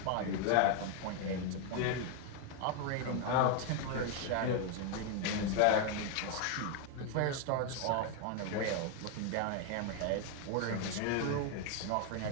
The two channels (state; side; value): different; both; correlation 0.01